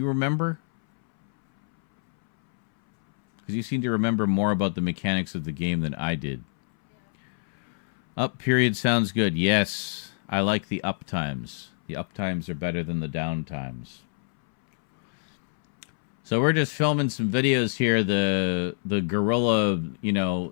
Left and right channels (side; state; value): right; silent; 61 dB below the other